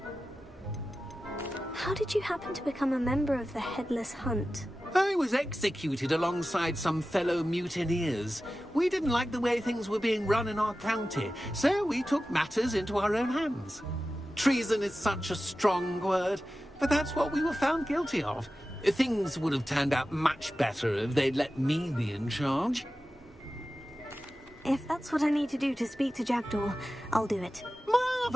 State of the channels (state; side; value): normal; both; correlation 0.94